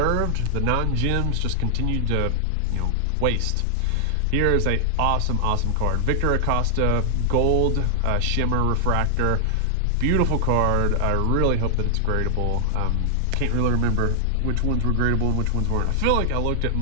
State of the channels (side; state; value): both; different; correlation 0.00